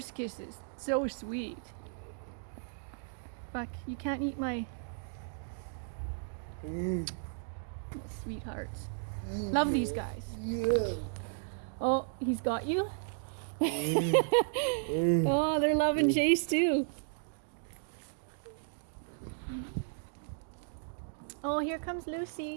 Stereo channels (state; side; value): silent; left; digital silence